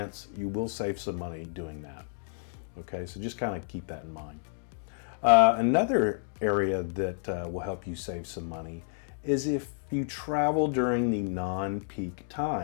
you will save some money doing that. Okay, so just kind of keep that in mind. Another area that will help you save some money is if you travel during the non-peak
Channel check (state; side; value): silent; right; digital silence